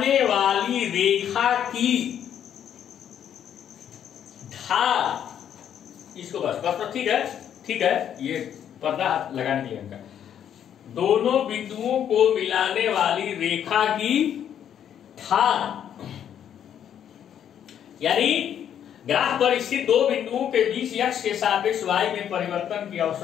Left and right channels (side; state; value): right; quieter; 9.5 dB